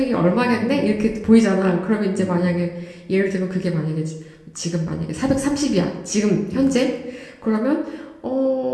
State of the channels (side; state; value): both; identical; correlation 1.00